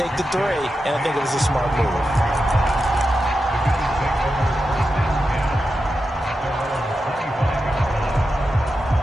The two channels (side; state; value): both; normal; correlation 0.89